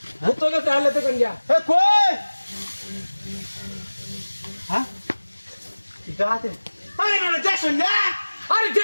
তোকে চালে তো কন্যা এ কই হ্যাঁ পিতা হাতিরা আরে না দেখছো না আরে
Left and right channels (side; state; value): both; inverted; correlation -1.00